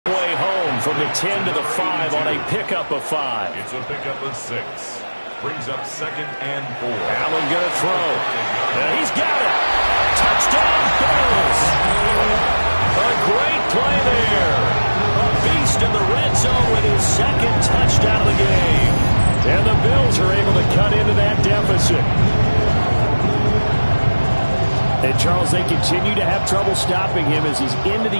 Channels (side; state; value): both; inverted; correlation -1.00